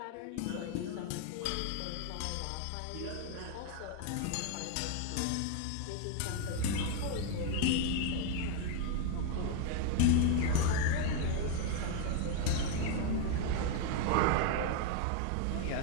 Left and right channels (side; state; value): both; different; correlation 0.01